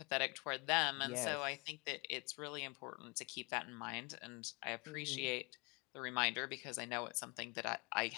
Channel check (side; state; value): right; quieter; 29.8 dB